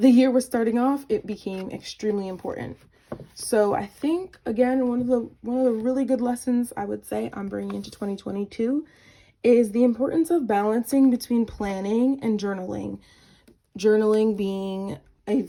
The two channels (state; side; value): identical; both; correlation 1.00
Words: the year was starting off, it became extremely important. So I think, again, one of the really good lessons I would say I'm bringing into 2022 is the importance of balancing between planning and journaling. Journaling being a